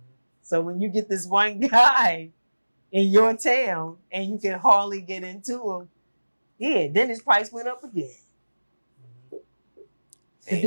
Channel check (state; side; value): inverted; both; correlation -1.00